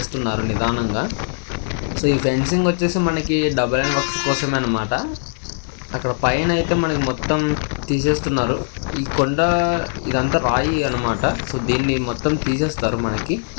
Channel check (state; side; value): silent; right; digital silence